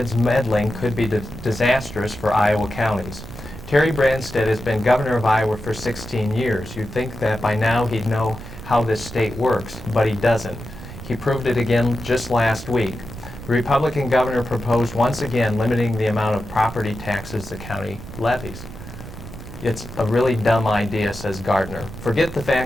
Meddling Could Be Disastrous for Iowa Counties." Terry Branstad has been governor of Iowa for 16 years. You'd think that by now he'd know how this state works, but he doesn't. He proved it again just last week. The Republican governor proposed once again limiting the amount of property taxes the county levies. It's a really dumb idea, says Gardner. Forget the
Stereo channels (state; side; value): noise; right; rumble, 13 dB below the sound